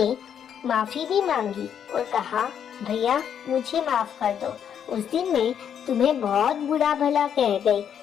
माफी भी मांगी और कहा, भैया मुझे माफ कर दो। उस दिन मैं तुम्हें बहुत बुरा भला कह गई।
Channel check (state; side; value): quieter; right; 8.6 dB